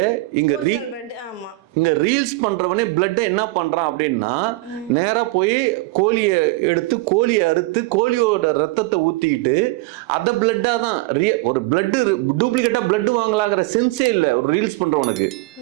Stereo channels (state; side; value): quieter; left; 21.2 dB